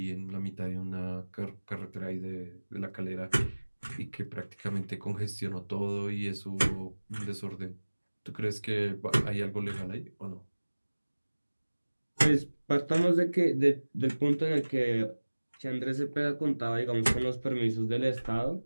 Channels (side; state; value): both; inverted; correlation -1.00